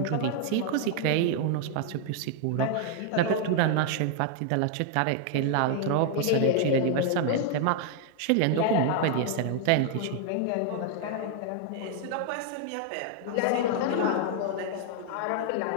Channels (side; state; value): both; different; correlation 0.00